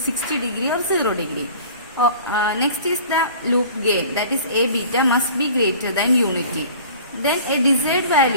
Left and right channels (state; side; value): inverted; both; correlation -0.45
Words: degree or 0 degree. Next is the loop gain, that is A beta must be greater than unity. Then a desired